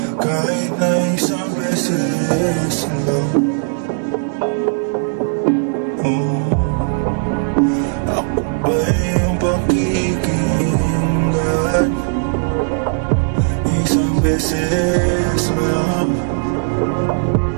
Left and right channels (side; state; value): left; silent; digital silence